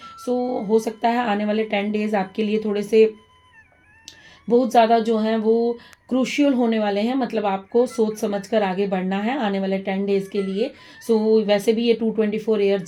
सो हो सकता है आने वाले 10 डेज़ आपके लिए थोड़े से बहुत ज़्यादा जो हैं वो क्रूशियल होने वाले हैं। मतलब आपको सोच समझ कर आगे बढ़ना है आने वाले 10 डेज़ के लिए। सो वैसे भी ये 224 ईयर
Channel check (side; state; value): both; identical; correlation 1.00